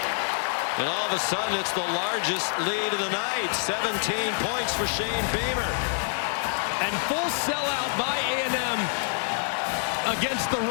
And all of a sudden it's the largest lead of the night. 17 points for Shane Beamer. And full sellout by A&M against the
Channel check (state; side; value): silent; right; 59 dB below the other